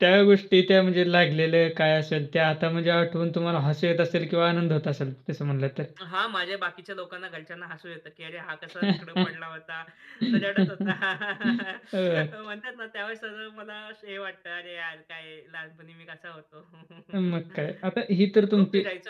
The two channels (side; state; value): both; identical; correlation 1.00